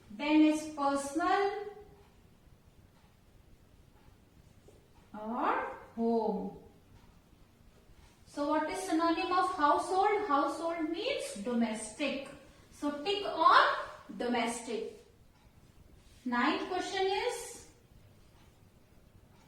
then is personal, or home. So what is synonym of household? Household means domestic. So tick on domestic. 9th question is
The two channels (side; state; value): both; identical; correlation 1.00